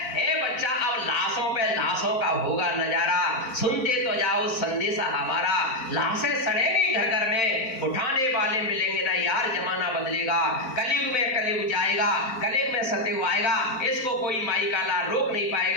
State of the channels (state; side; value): late; right; 4.4 ms